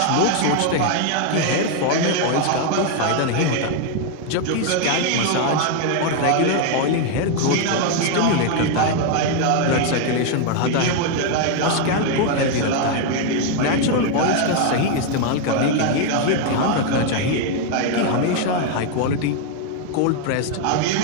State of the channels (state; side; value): different; both; correlation 0.01